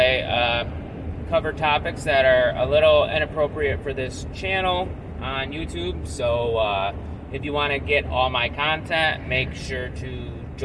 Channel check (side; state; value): both; identical; correlation 1.00